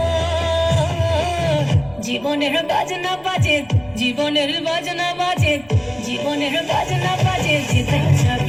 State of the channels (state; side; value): noise; left; rumble, 28 dB below the sound